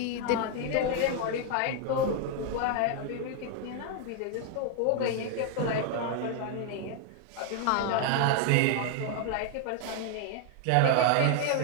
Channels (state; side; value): different; both; correlation 0.00